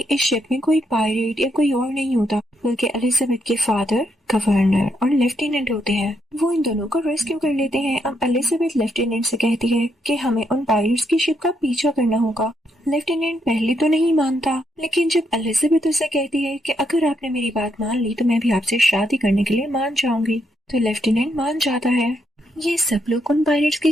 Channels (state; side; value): normal; both; correlation 0.78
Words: इस शिप में कोई पायरेट या कोई और नहीं होता, बल्कि एलिजाबेथ के फादर, गवर्नर और लेफ्टिनेंट होते हैं। वो इन दोनों को रेस्क्यू कर लेते हैं। अब एलिजाबेथ लेफ्टिनेंट से कहती है कि हमें उन पायरेट्स की शिप का पीछा करना होगा। लेफ्टिनेंट पहले तो नहीं मानता, लेकिन जब एलिजाबेथ उसे कहती है कि अगर आपने मेरी बात मान ली तो मैं भी आपसे शादी करने के लिए मान जाऊंगी, तो लेफ्टिनेंट मान जाता है। ये सब लोग उन पायरेट्स की